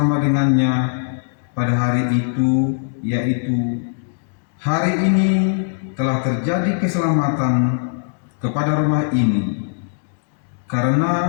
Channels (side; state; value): right; silent; digital silence